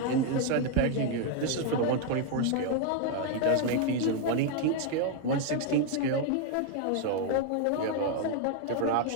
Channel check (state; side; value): different; both; correlation 0.01